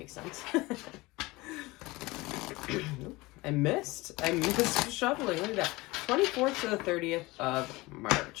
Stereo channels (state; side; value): quieter; right; 21.8 dB